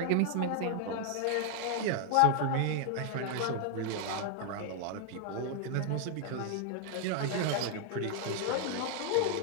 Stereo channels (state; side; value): different; both; correlation 0.00